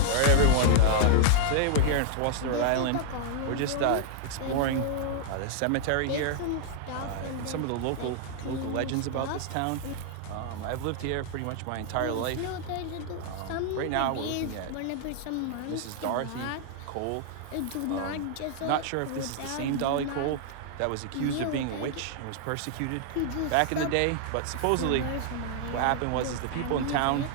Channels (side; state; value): both; different; correlation -0.01